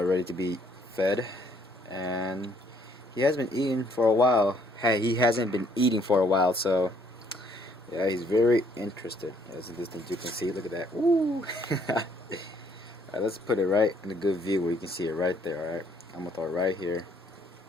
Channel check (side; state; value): both; normal; correlation 0.66